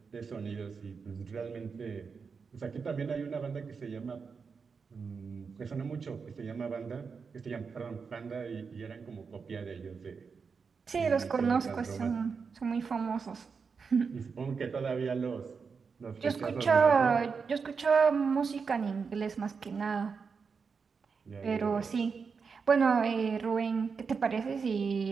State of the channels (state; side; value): quieter; left; 5.5 dB